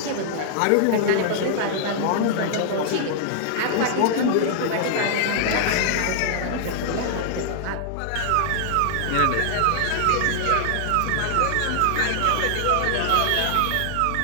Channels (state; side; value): different; both; correlation -0.01